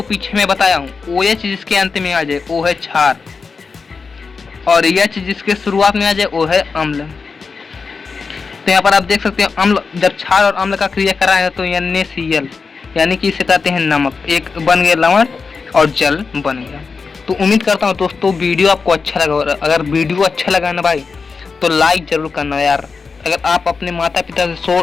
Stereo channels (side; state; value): right; quieter; 4.8 dB